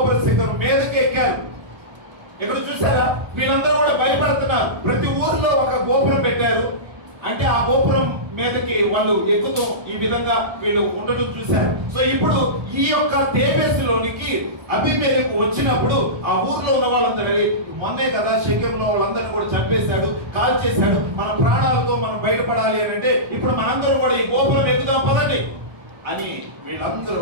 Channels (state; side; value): late; left; 1.2 ms